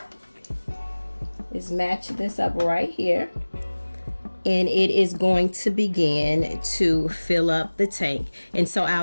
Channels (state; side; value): inverted; both; correlation -1.00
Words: is match this up right here. And it is going to begin to fill up the tank. And so